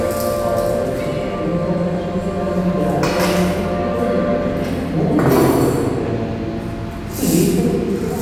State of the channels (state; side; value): identical; both; correlation 1.00